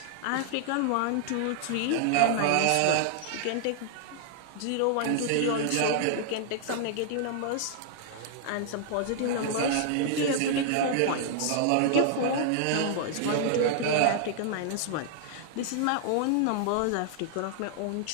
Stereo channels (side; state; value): both; different; correlation -0.01